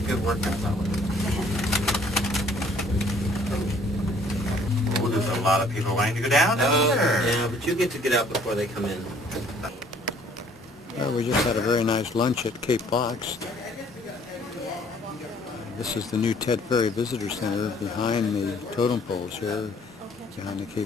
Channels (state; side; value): normal; both; correlation 0.59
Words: workout that way. Oh, there's a lot of people wanting to go down there. Yeah, but you get to get out before they come in. Well, we just had a very nice lunch at Cape Fox. This is the new Ted Ferry Visitor Center behind the totem poles here, behind the